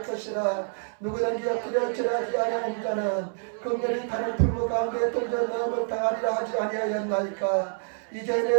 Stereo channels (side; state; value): left; silent; 60 dB below the other